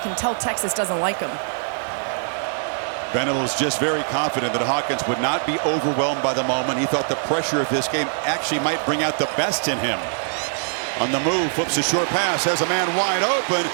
tell Texas doesn't like them. Venables just very confident that Hawkins would not be overwhelmed by the moment. He thought the pressure of this game actually might bring out the best in him. On the move, flips a short pass, has a man wide open,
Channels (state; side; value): silent; left; 60 dB below the other